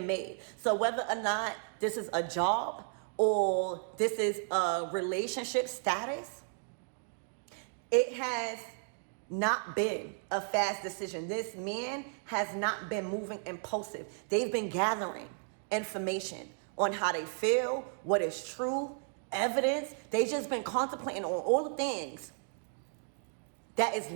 made. So whether or not this is a job or this is a relationship status, it has not been a fast decision. This man has not been moving impulsive. They've been gathering information on how they feel, what is true, evidence. They've just been contemplating on all the things that is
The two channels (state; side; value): silent; left; 55 dB below the other